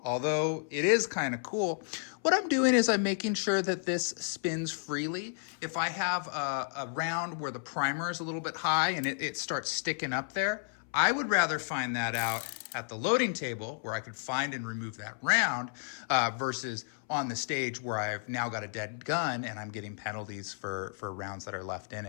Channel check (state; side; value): silent; right; 56 dB below the other